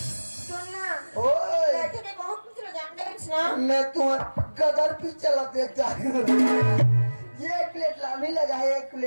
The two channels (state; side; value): inverted; both; correlation -1.00